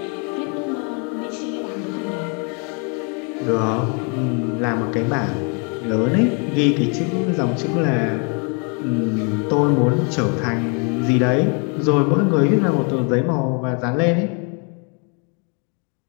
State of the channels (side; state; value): right; quieter; 36.5 dB